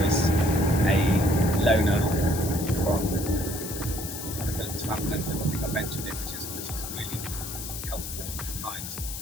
is a loaner from one of Philippa's family members. I think I mentioned it, which is really helpful and kind.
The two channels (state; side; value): noise; left; hiss, 8 dB below the sound